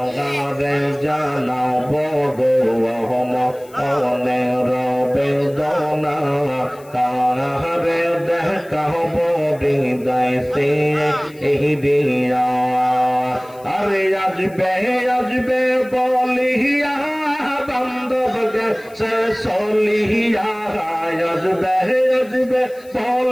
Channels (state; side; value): noise; left; hiss, 26 dB below the sound